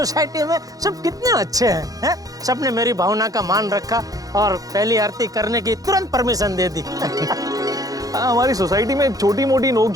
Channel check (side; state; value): left; late; 0.17 ms